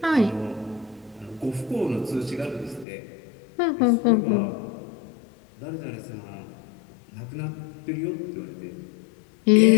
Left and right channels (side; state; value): right; drops out; at 2.9 s